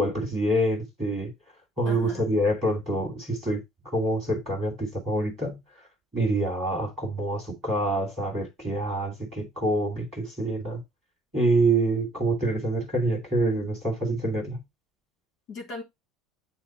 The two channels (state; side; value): normal; both; correlation 0.62